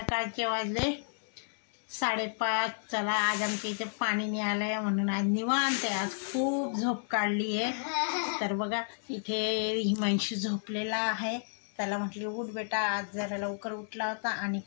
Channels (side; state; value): right; silent; digital silence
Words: वाजले 5:30. चला आज आमच्या इथे पाणी नाही आलं आहे म्हणून आज निवांत आहे. आज खूप झोप काढली आहे. तर बघा इथे हिमांशू झोपलेला आहे. त्याला म्हटलं उठ बेटा, आज जरा लवकर उठला होता आणि